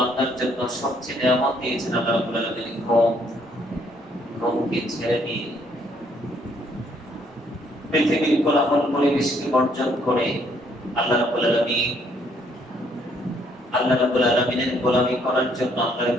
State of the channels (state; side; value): normal; both; correlation 0.67